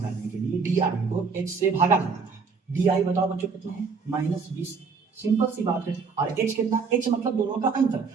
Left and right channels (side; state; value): left; quieter; 5.1 dB